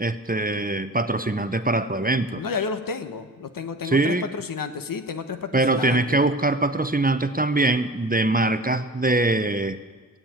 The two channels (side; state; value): both; normal; correlation 0.37